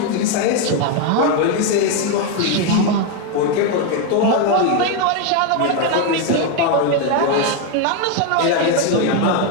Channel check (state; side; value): different; both; correlation 0.02